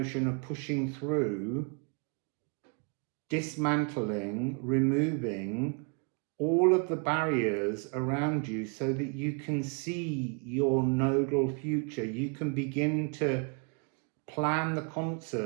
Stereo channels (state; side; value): quieter; left; 35.9 dB